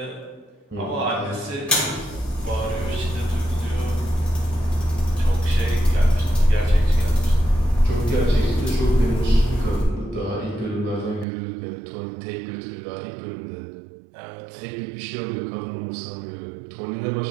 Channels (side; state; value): left; drops out; at 11.2 s